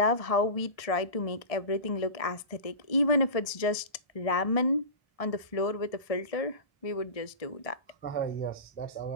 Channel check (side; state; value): right; late; 1.6 ms